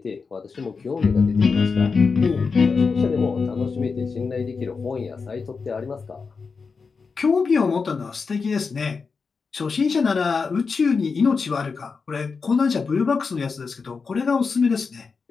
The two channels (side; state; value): right; quieter; 5.0 dB